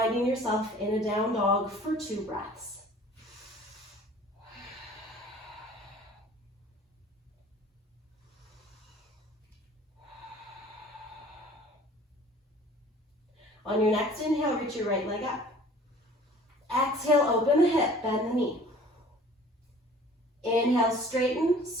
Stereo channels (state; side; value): normal; both; correlation 0.49